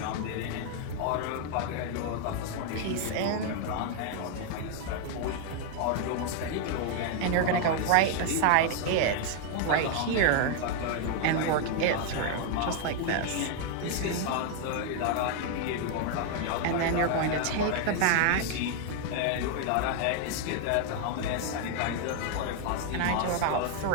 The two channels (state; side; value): different; both; correlation 0.00